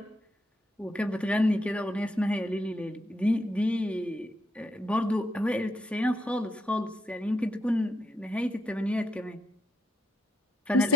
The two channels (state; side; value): normal; both; correlation 0.78